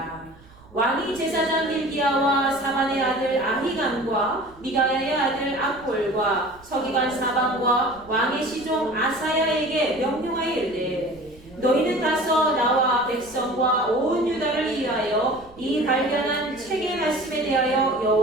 왕이 제사장 힐기야와 사반의 아들 아히감과 미가야의 아들 악볼과 서기관 사반과 왕의 시종 아사야에게 명령하여 이르되 너희는 가서 나와 백성과 온 유다를 위하여 이 발견한 책의 말씀에 대하여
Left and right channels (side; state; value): right; noise; rumble, 24 dB below the sound